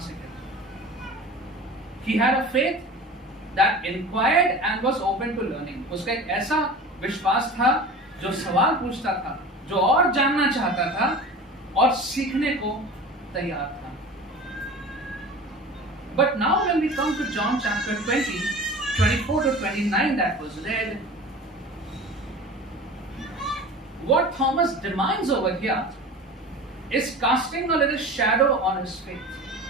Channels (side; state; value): both; normal; correlation 0.37